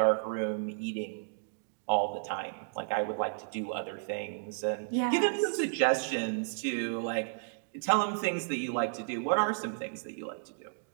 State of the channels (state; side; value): silent; left; digital silence